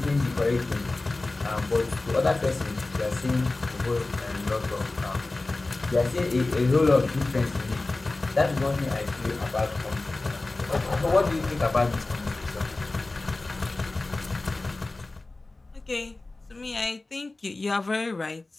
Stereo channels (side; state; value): right; quieter; 3.2 dB